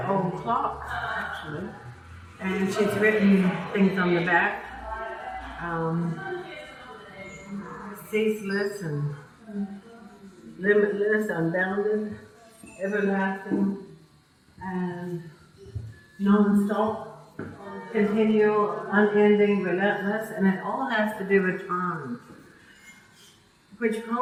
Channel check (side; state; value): both; identical; correlation 1.00